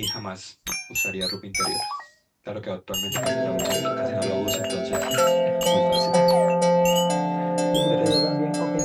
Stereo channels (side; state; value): both; identical; correlation 1.00